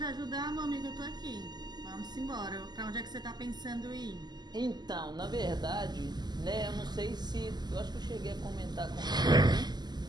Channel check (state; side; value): late; left; 0.21 ms